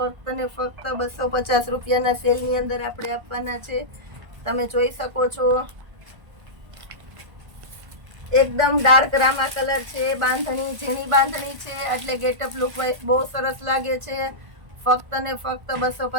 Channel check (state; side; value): late; left; 1.5 ms